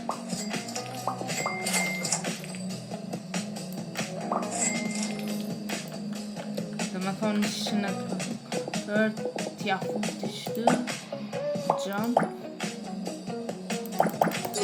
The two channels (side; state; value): both; identical; correlation 1.00